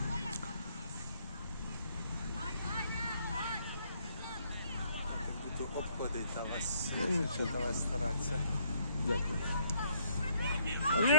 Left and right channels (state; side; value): inverted; both; correlation -0.68